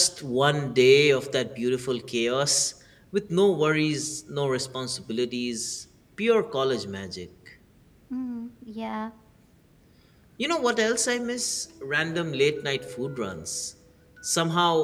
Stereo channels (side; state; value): both; identical; correlation 1.00